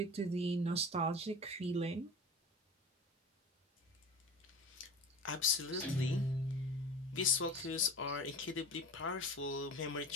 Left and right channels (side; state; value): both; normal; correlation 0.34